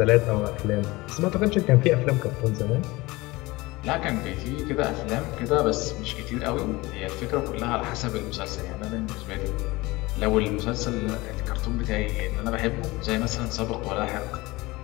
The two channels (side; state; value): right; quieter; 21.4 dB